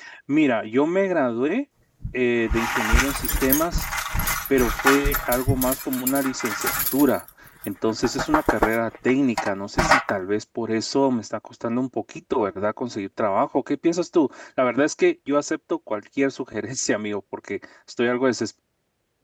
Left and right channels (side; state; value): both; identical; correlation 1.00